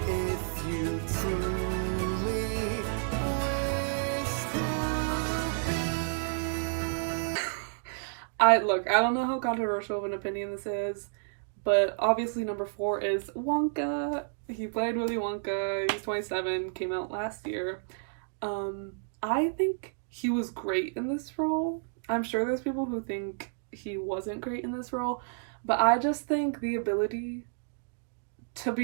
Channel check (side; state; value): left; silent; digital silence